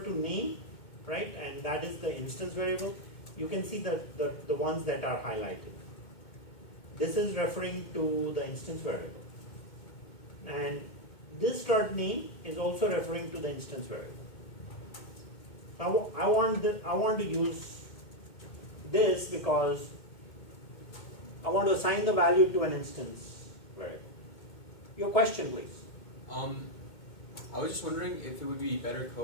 name, right, and that is the instance variable, you can see the ones that are highlighted. This is referring to the instance variable. And this dot name is also referring to the instance variable. So I want to use this because I want to assign the value to an instance variable. Your question, please. I was just wondering if it would be better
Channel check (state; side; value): late; right; 2.2 ms